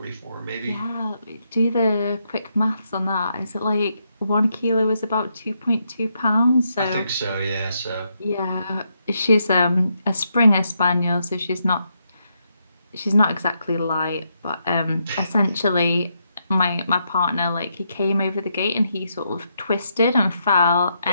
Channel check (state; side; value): inverted; both; correlation -0.79